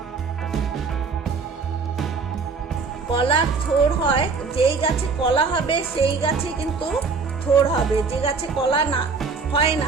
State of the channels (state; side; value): quieter; left; 4.7 dB